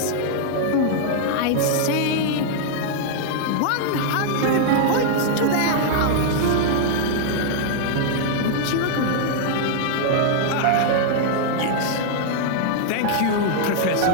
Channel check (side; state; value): both; different; correlation -0.01